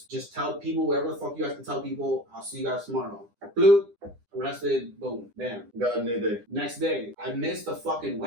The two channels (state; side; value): late; left; 9.9 ms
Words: tell people, whatever the fuck you have to tell people. I'll see you guys tomorrow. Bloop. Arrested, boom, bam. Got a new day. Next day, I missed the fucking